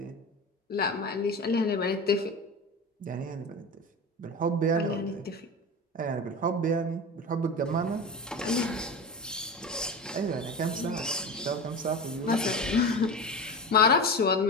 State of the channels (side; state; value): both; normal; correlation 0.27